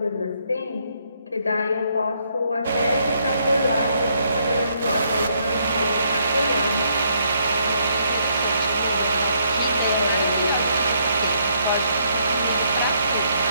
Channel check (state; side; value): inverted; both; correlation -0.72